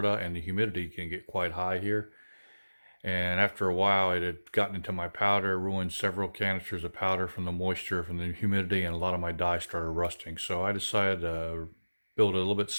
and the humidity can get quite high here. And after a while, it had gotten into my powder, ruined several canisters of powder from the moisture, from the humidity, and a lot of my dye started rusting. So I decided to build a little bit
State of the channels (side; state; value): both; inverted; correlation -1.00